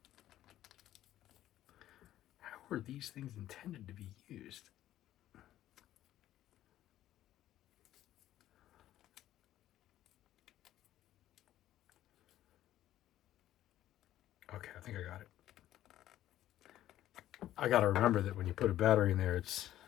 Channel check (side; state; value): right; quieter; 13.1 dB